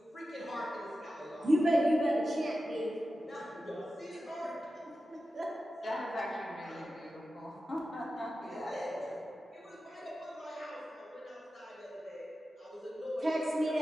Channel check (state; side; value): normal; both; correlation 0.92